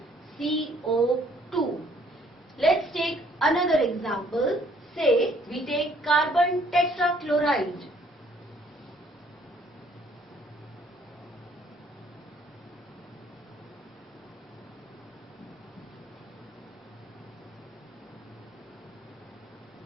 CO2. Let's take another example. Say we take carbon tetrachloride.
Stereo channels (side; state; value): both; normal; correlation 0.62